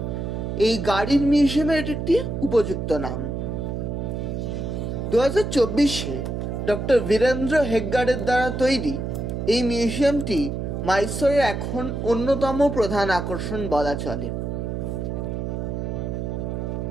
এই গাড়ির মিউজিয়ামের একটি উপযুক্ত নাম। 2024-এ ডক্টর বীরেন্দ্র হেগগাড়ের দ্বারা তৈরি এই মিউজিয়ামটি মাইসোরের এখন অন্যতম প্রধান আকর্ষণ বলা চলে।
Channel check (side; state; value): right; noise; hum, 3 dB below the sound